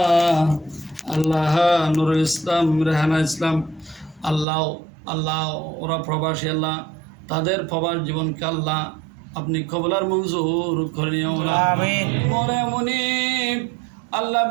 আল্লাহ নুরুল ইসলাম, রেহানা ইসলাম, আল্লাহ আল্লাহ ওরা প্রবাসী আল্লাহ, তাদের প্রবাস জীবনকে আল্লাহ আপনি কবুলার মঞ্জুর করে নিও মনে মুনিব আল্লাহ।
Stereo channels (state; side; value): drops out; left; at 4.5 s